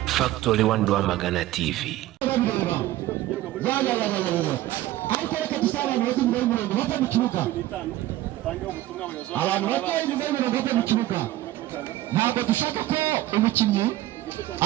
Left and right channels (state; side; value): quieter; left; 15.4 dB